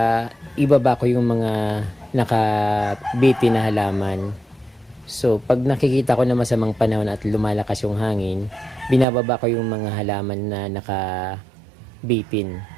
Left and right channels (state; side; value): drops out; left; at 9.1 s